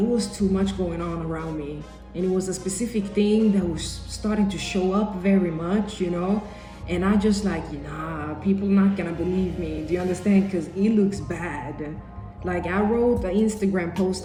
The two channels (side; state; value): both; identical; correlation 1.00